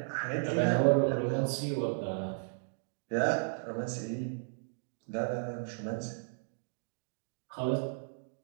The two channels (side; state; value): left; silent; digital silence